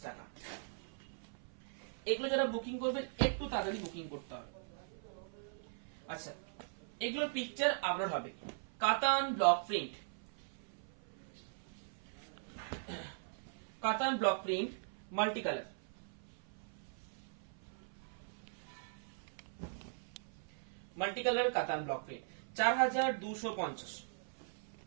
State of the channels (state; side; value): silent; left; 51 dB below the other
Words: টাকা। এগুলো যারা বুকিং করবেন একটু তাড়াতাড়ি বুকিং করতে হবে। আচ্ছা, এগুলোর পিকচার আপলোড হবে। কাতান ব্লক প্রিন্ট, কাতান block print multi colour, multi colour কাতান ব্লক প্রিন্ট 4250।